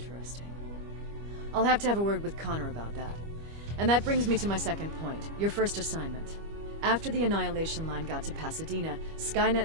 I'll have to have a word with Connor about that. And that brings me to my second point, your first assignment. After the Annihilation Line got to Pasadena,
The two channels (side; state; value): left; late; 25 ms